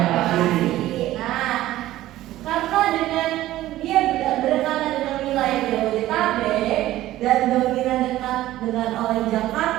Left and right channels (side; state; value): left; quieter; 15.0 dB